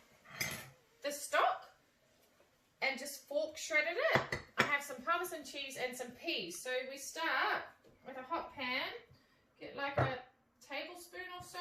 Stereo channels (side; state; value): both; identical; correlation 1.00